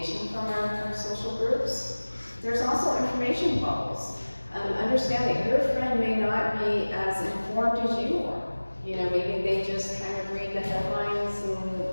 from our social groups. There's also information bubbles. Understand that your friend may not be as informed as you are. Maybe they just kind of read the headlines,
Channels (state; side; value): inverted; both; correlation -1.00